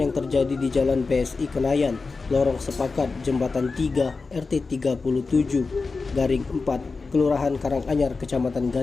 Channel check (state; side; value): quieter; right; 4.2 dB